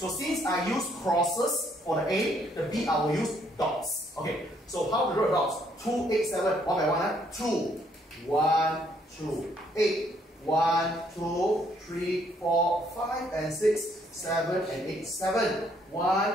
since I use crosses for the A, the B I will use dots. Okay, so how to draw dots? 2, 8, 7, 1 by 1, 2, 1, 2, 8, 1, 2, 3, 4, 5, and 6, 7, and 8, 7.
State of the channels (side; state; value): both; normal; correlation 0.68